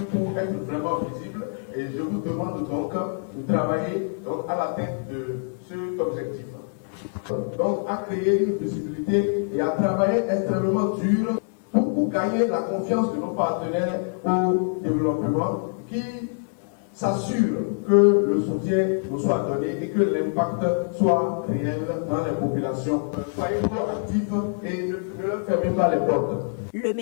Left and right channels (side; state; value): right; silent; 62 dB below the other